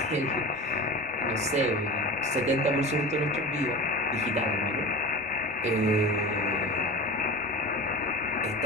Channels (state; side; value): normal; both; correlation 0.32